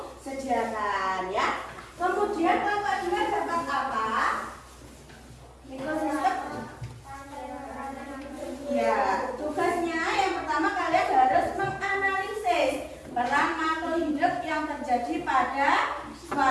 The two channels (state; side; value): identical; both; correlation 1.00